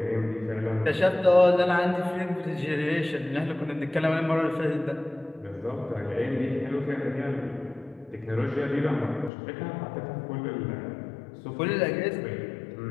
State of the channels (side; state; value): right; drops out; at 9.3 s